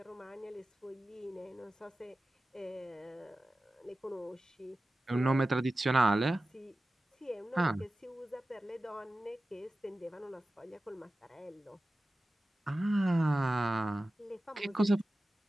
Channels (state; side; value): normal; both; correlation 0.95